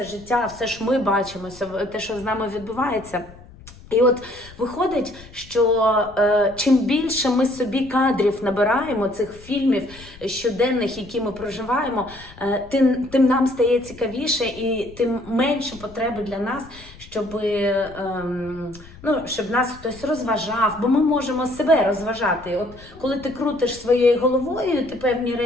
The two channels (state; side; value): noise; left; rumble, 20 dB below the sound